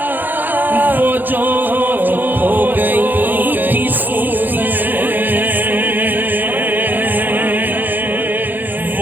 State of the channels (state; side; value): late; left; 0.088 ms